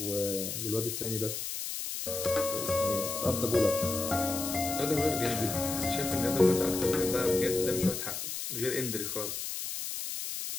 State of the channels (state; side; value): noise; left; hiss, 5 dB below the sound